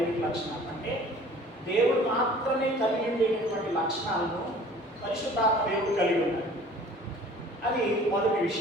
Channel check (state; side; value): normal; both; correlation 0.49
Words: లక్షణాలు అంటే దేవుడు మాత్రమే కలిగి ఉండేటటువంటి లక్షణాలను పరిశుద్ధాత్మ దేవుడు కలిగి ఉన్నాడు. అది మొదటి